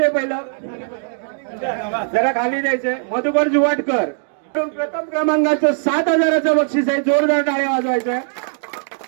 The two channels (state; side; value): silent; left; digital silence